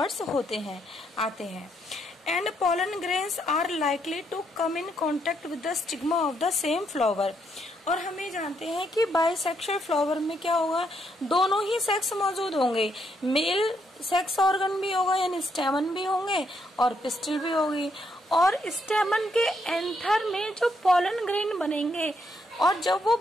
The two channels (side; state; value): both; normal; correlation 0.75